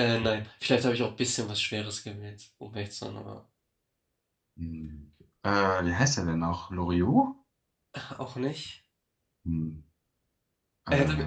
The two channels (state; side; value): identical; both; correlation 1.00